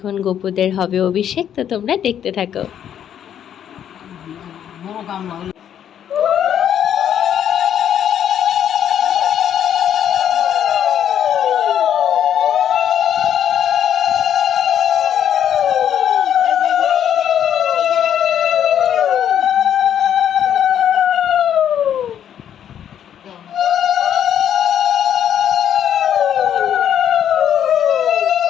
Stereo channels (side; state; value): right; quieter; 9.6 dB